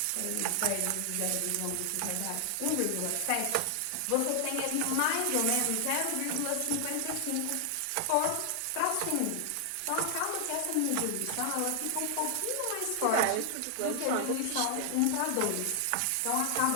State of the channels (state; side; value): different; both; correlation 0.00